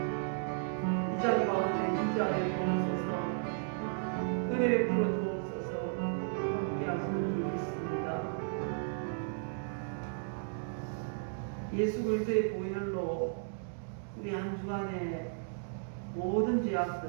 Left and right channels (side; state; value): left; silent; digital silence